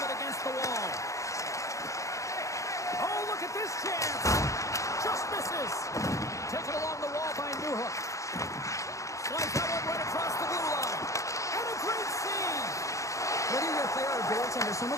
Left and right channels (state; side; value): late; right; 0.15 ms